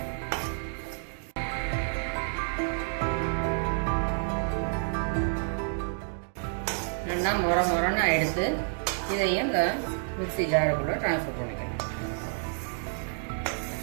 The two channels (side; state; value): left; silent; 58 dB below the other